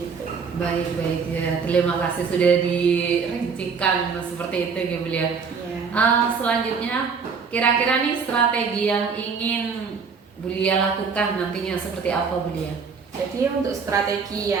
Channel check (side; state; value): left; quieter; 5.6 dB